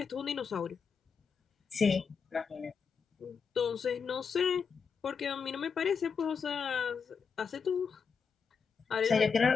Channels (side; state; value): right; quieter; 5.9 dB